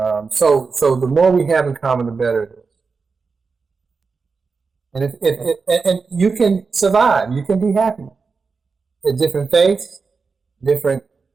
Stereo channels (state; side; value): quieter; left; 4.8 dB